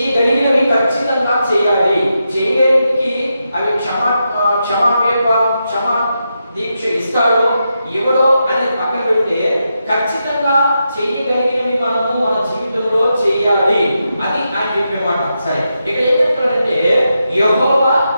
ఖచ్చితంగా చేయాలి. చేయలేనికి అవి క్షమా దీక్ష ఇస్తాడో ఎవడో అనేది పక్కన పెడితే ఖచ్చితంగా చేయగలిగినవి మనము మన జీవితంలో చేయాలి. అది ఆయన చెప్పే మాట. సరే, ఇక్కడ ఏం చెప్తున్నాడంటే యెహోవా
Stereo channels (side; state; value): both; inverted; correlation -0.86